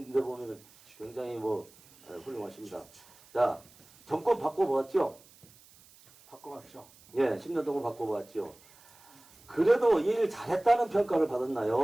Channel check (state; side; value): noise; right; hiss, 26 dB below the sound